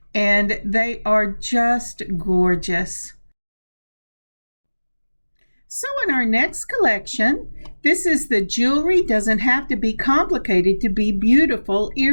And they are just gorgeous. So in our next collection, this is the Jewelry Doesn't Have to Be Complicated to Be Beautiful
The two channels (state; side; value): inverted; both; correlation -1.00